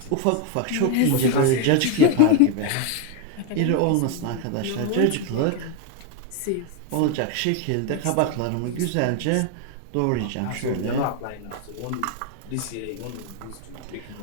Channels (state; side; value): different; both; correlation 0.01